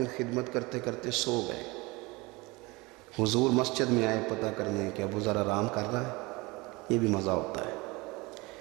خدمت کرتے کرتے سو گئے. حضور مسجد میں آئے پتہ کرنے کہ ابو ذر آرام کر رہا ہے. یہ بھی مزہ ہوتا ہے،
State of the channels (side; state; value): left; quieter; 24.2 dB